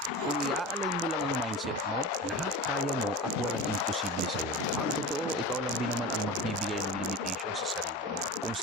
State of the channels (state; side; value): normal; both; correlation 0.29